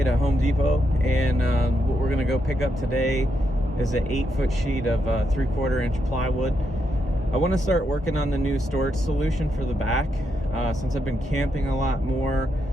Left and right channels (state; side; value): normal; both; correlation 0.81